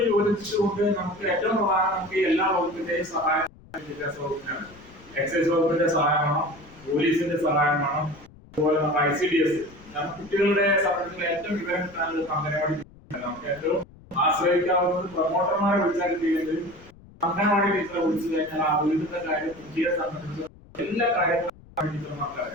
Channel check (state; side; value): noise; left; rumble, 23 dB below the sound